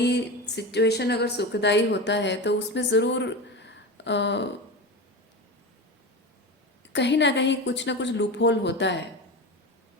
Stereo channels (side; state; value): both; normal; correlation 0.24